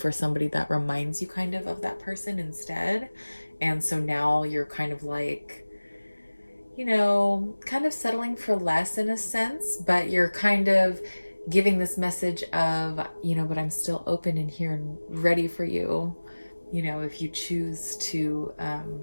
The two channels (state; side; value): inverted; both; correlation -1.00